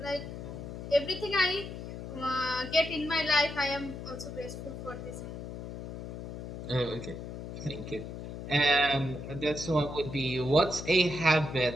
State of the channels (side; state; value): left; noise; hum, 9 dB below the sound